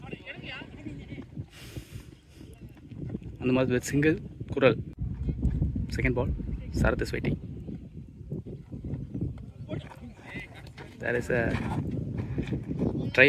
அந்த மாதிரி வித் சிங்கிள் குரல். Second ball Sarath is waiting. There is a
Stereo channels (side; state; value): both; identical; correlation 1.00